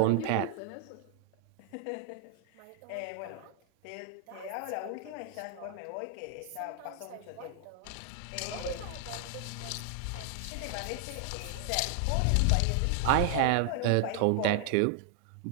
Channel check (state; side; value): different; both; correlation 0.00